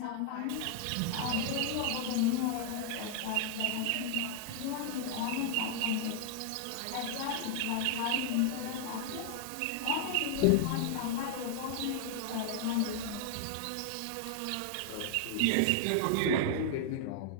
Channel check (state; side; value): different; both; correlation 0.00